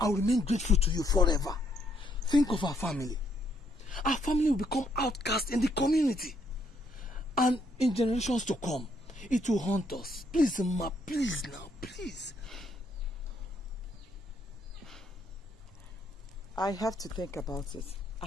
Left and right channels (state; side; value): normal; both; correlation 0.71